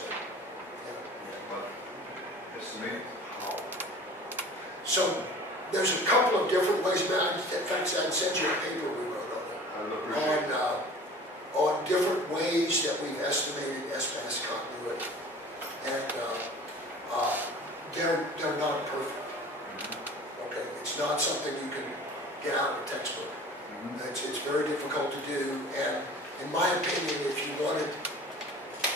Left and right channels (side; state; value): both; normal; correlation 0.43